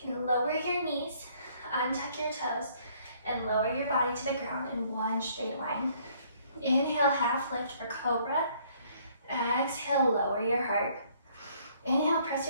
can lower your knees, untuck your toes, and lower your body to the ground in one straight line. Inhale, half lift for cobra. Exhale, lower your heart. Inhale, press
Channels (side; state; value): both; inverted; correlation -0.63